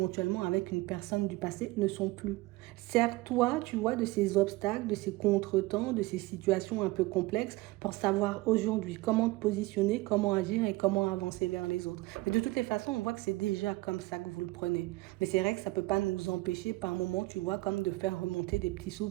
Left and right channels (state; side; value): quieter; left; 20.5 dB